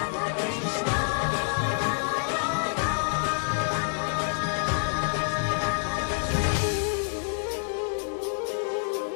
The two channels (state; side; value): silent; right; 60 dB below the other